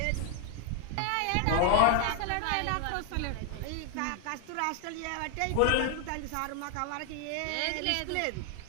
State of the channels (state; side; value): different; both; correlation 0.00